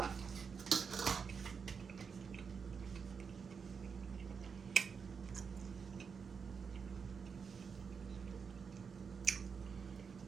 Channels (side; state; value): left; quieter; 6.0 dB